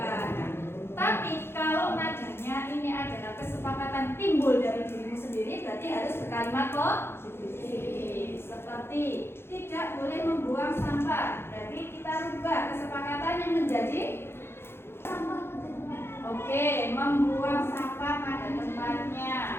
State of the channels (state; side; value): late; right; 0.11 ms